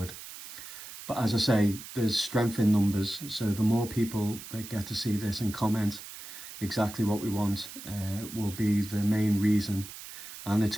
But as I say, there's strength in numbers, so the more people that get to see this and comment exactly what we want will be the main reason. And it's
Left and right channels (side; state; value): right; noise; hiss, 13 dB below the sound